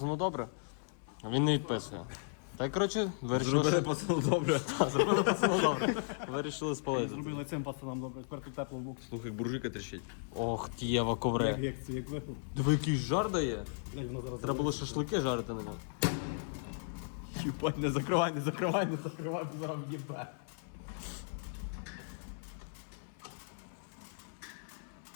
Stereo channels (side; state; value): right; silent; 54 dB below the other